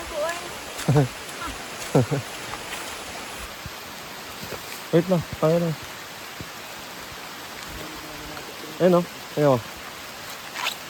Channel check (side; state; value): both; identical; correlation 1.00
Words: po ay. Wait lang, tayo lang. Ayun o, ayun o.